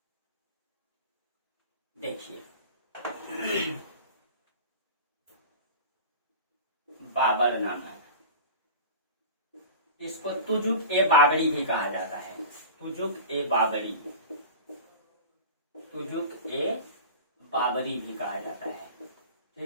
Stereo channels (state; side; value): inverted; both; correlation -0.34